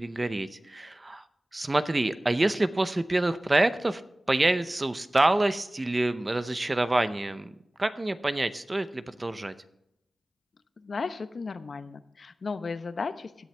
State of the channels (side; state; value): both; normal; correlation 0.98